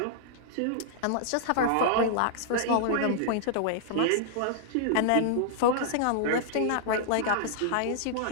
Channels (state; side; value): different; both; correlation -0.01